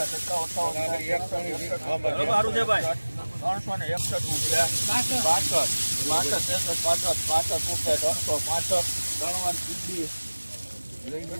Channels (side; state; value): both; inverted; correlation -1.00